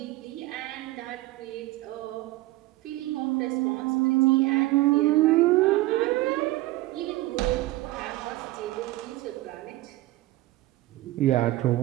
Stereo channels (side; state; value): left; quieter; 18.2 dB